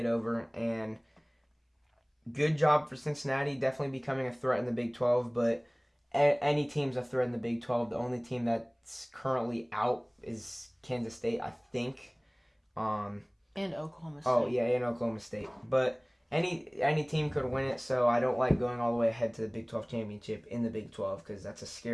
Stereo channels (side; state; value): both; identical; correlation 1.00